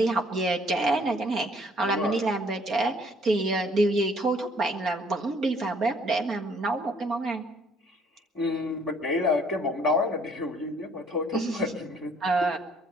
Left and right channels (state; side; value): normal; both; correlation 0.62